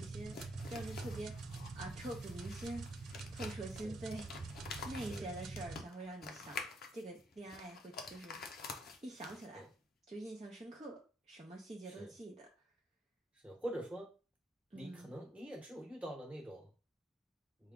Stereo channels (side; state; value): both; normal; correlation 0.74